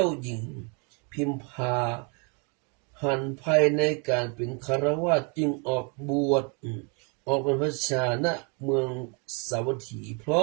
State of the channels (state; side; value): quieter; left; 34.7 dB